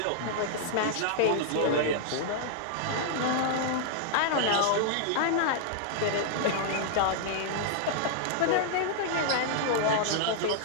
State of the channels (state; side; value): different; both; correlation -0.01